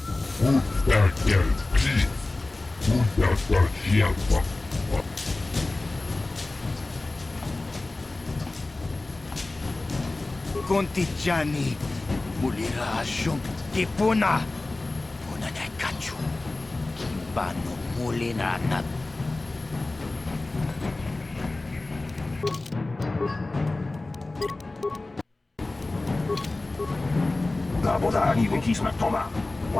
Kontijani, mulira shum, kipuna, puna na kachu, kimbano mulina na. Labodani wikisma toma,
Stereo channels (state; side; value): quieter; right; 3.0 dB